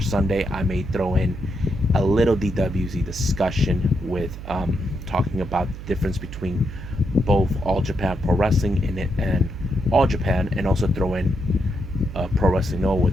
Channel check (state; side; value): noise; right; hum, 11 dB below the sound